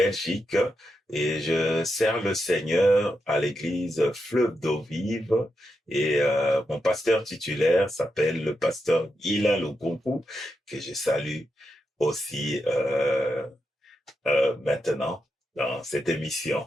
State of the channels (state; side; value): normal; both; correlation 0.85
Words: et je sers le Seigneur à l'église Fleuve d'eau vive. Et mon pasteur titulaire s'appelle le pasteur Ila Lukunku, que je salue aussi maintenant dans cette émission.